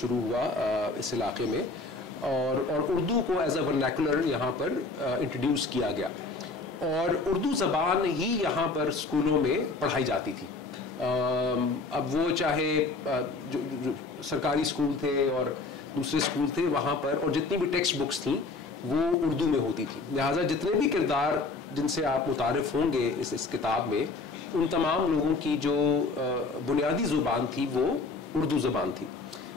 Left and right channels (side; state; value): right; quieter; 3.9 dB